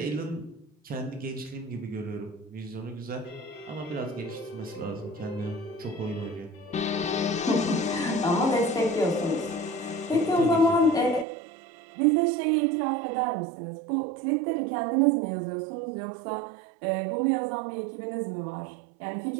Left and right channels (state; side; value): drops out; left; at 11.2 s